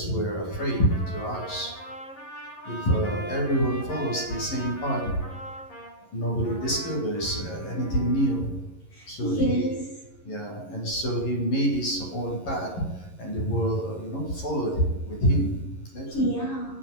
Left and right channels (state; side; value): late; right; 11 ms